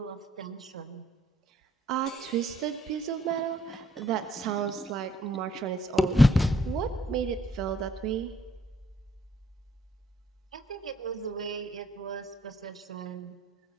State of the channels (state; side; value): normal; both; correlation 0.67